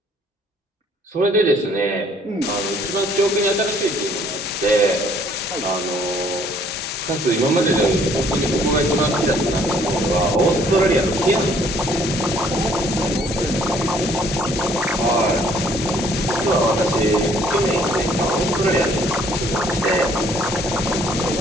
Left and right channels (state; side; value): normal; both; correlation 0.61